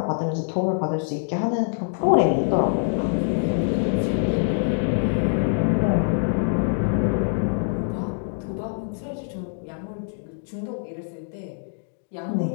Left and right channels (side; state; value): right; silent; digital silence